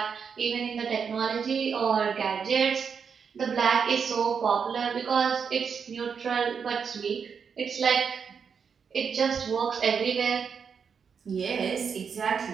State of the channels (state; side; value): quieter; left; 6.4 dB